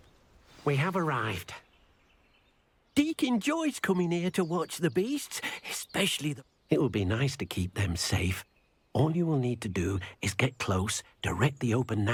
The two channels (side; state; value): both; identical; correlation 1.00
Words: We have arrived. Deke enjoys coming here to watch the beasts, especially the... It will be nice to keep them safe. All you will need to do is get close, direct the open